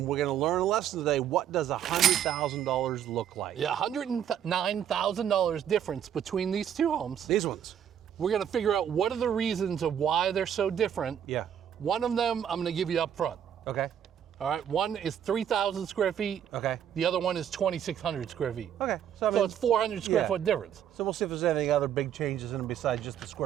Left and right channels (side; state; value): left; quieter; 9.4 dB